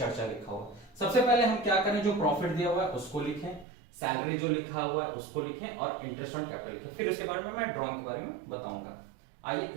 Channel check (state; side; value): drops out; left; at 3.7 s